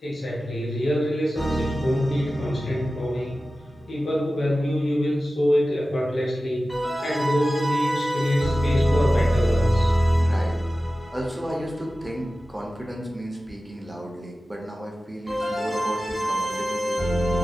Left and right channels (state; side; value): normal; both; correlation 0.95